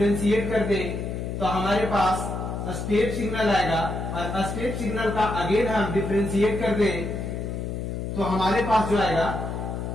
कर दे तो हमारे पास स्टेप सिग्नल आएगा। और स्टेप सिग्नल का अगेन हम डिफरेंशिएट कर दे तो हमारे पास जो आएगा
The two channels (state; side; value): noise; left; hum, 4 dB below the sound